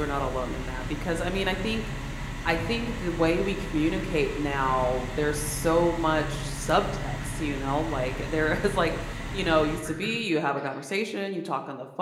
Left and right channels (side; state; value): both; identical; correlation 1.00